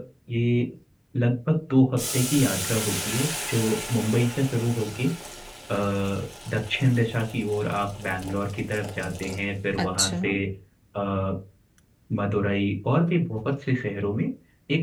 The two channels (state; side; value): identical; both; correlation 1.00